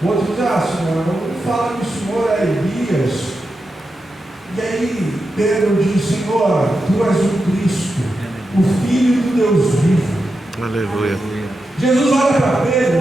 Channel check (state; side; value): normal; both; correlation 0.89